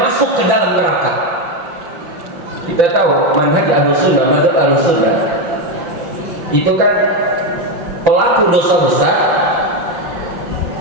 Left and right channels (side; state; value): left; late; 5.8 ms